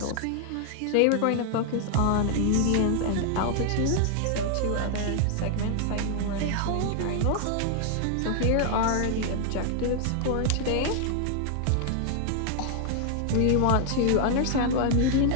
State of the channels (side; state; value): both; different; correlation 0.00